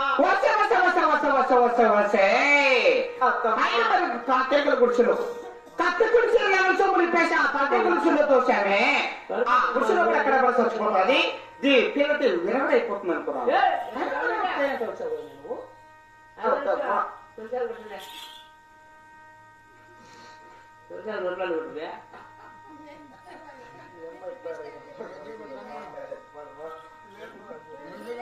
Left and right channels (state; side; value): identical; both; correlation 1.00